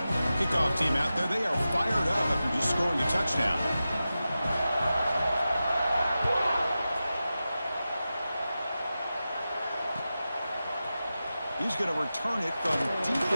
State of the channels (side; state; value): both; inverted; correlation -0.93